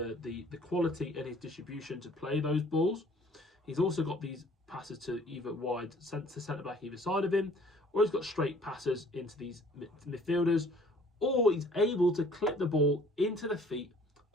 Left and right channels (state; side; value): normal; both; correlation 0.55